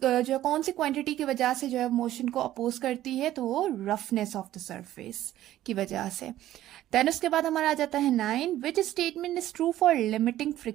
जो कौन सी क्वांटिटी की वजह से जो है मोशन को अपोज करती है? तो वो रफनेस ऑफ द सरफेस की वजह से। देन उसके बाद हमारा आ जाता है 9, which statement is true for limiting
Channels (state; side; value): quieter; left; 13.6 dB